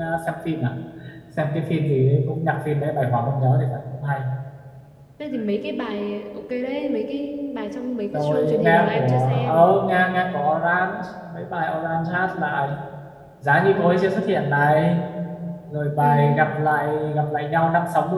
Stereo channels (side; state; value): both; identical; correlation 1.00